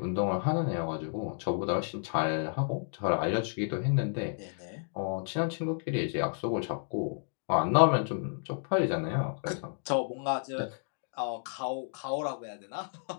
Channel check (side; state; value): right; silent; digital silence